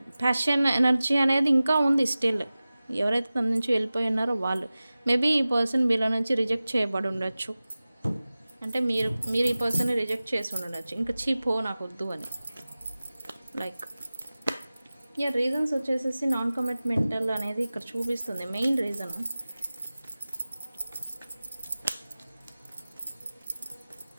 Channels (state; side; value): inverted; both; correlation -0.97